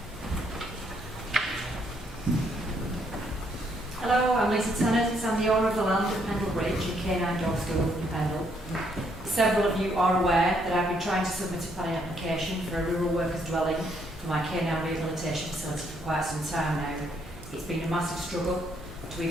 Several of you are aware that I've been trying to submit a planning application for a rural workers dwelling for my canine rehabilitation facility for quite some time now. It's been a massive struggle to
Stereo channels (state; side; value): normal; both; correlation 0.72